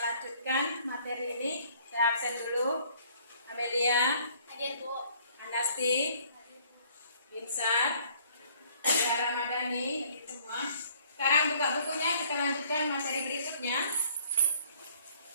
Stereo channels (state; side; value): inverted; both; correlation -0.59